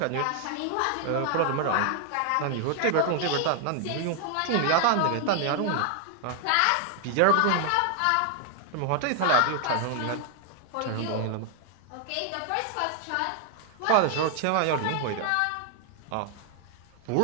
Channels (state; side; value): different; both; correlation 0.00